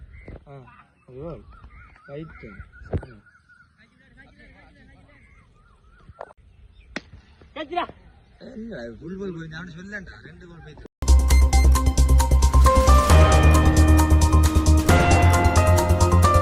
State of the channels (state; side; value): identical; both; correlation 1.00